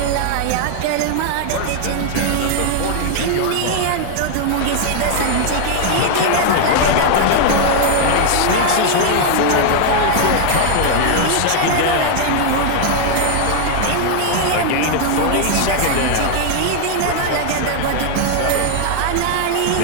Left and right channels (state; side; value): different; both; correlation 0.00